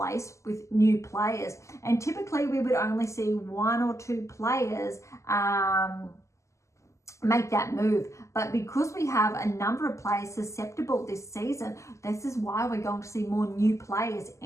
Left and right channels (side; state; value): right; late; 0.14 ms